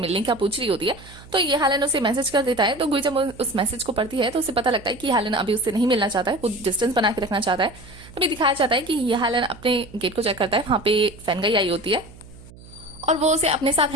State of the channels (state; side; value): noise; right; hum, 20 dB below the sound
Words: का पूछ रही होती है। तो ये हालन उसे मैसेज कर देता है। तो गुई जब उस मैसेज को पढ़ती है तो उसे पता लगता है कि हालन अभी उससे नहीं मिलना चाहता है, वो डिस्टेंस बना के रखना चाहता है। तभी दिखाया जाता है कि ये हालन अपने गेट को चेक करता है, वहां पे फैनगाई आई होती है और वो उसे अपने साथ